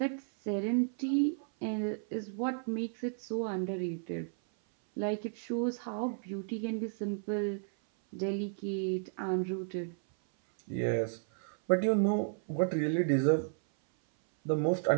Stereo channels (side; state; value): left; silent; 56 dB below the other